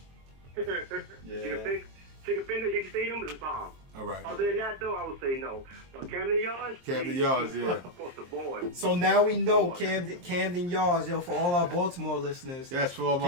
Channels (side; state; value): left; late; 23 ms